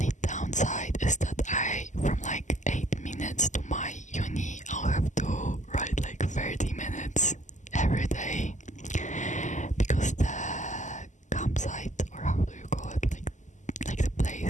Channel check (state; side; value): late; right; 0.35 ms